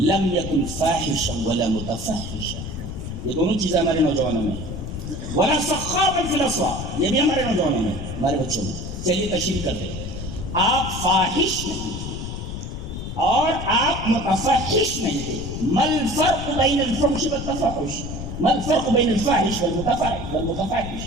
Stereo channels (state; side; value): noise; left; rumble, 7 dB below the sound